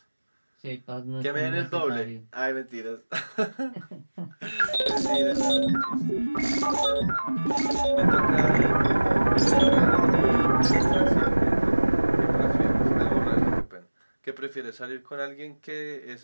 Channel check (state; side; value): inverted; both; correlation -1.00